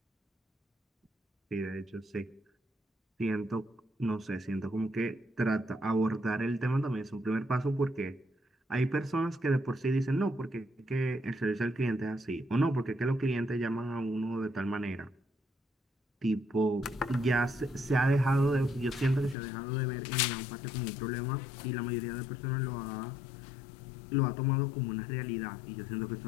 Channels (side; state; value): right; drops out; at 19.4 s